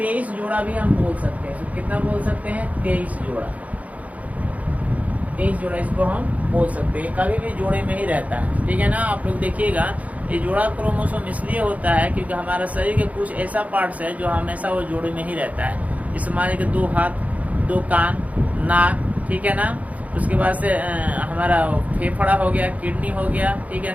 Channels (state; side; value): late; left; 0.070 ms